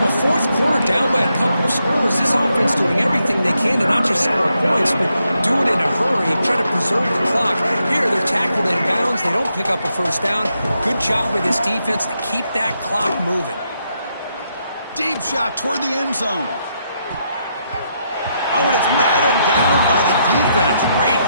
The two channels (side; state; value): both; inverted; correlation -0.80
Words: 4th quarter, down by a couple of scores. This offense doing everything they can to not just score points, but do it in a hurry, try to preserve the clock. Here, they're tackled in bounds. They don't pick up a first down. Good job by this defense to keep that clock moving. Deep shot toward the end zone. Oh, and it's batted down by the defense. Great